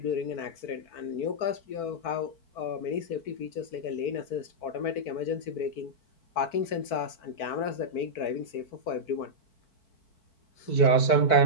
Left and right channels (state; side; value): late; right; 4.5 ms